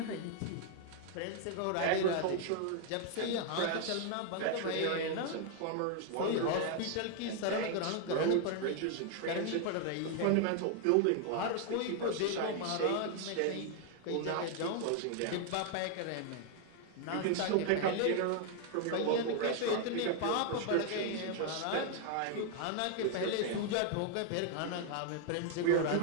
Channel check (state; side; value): different; both; correlation 0.00